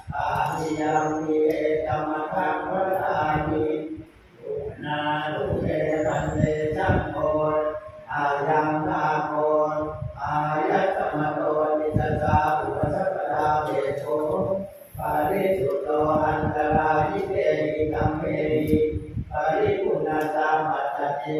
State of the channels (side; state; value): both; identical; correlation 1.00